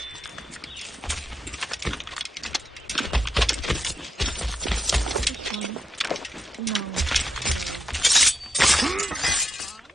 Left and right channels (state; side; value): normal; both; correlation 0.80